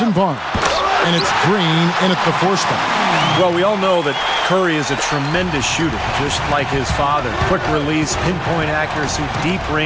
Barnes, and it's Green in at the 4 spot. Well, we all know that Curry is a tremendous shooter, just like his father. Quick release, pinpoint accuracy, deep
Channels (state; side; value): identical; both; correlation 1.00